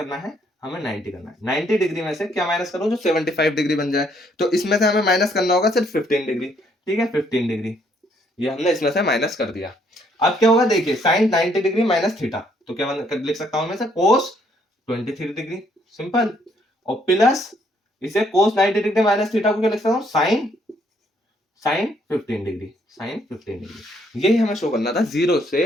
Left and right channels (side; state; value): both; normal; correlation 0.68